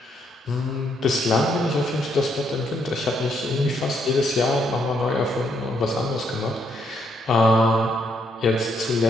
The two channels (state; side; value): normal; both; correlation 0.74